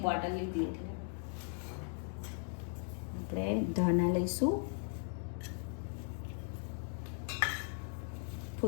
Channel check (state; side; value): silent; right; 52 dB below the other